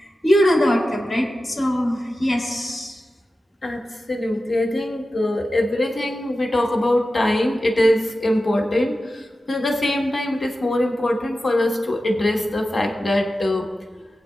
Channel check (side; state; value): both; normal; correlation 0.93